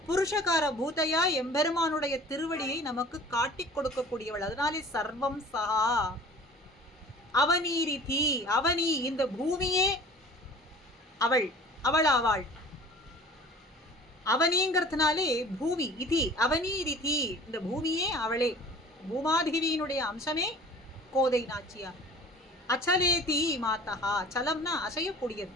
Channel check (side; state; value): both; normal; correlation 0.46